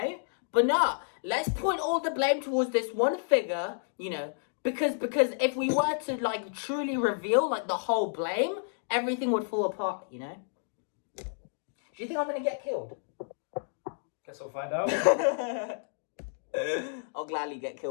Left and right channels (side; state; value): right; silent; digital silence